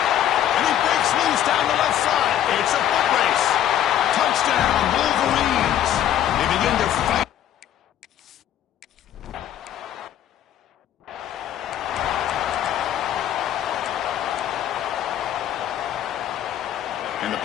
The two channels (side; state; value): right; quieter; 11.1 dB